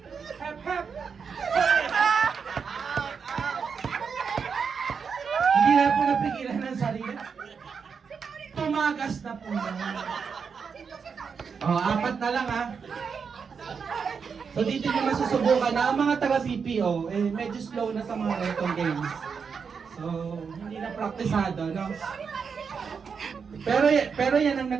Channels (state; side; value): quieter; left; 6.0 dB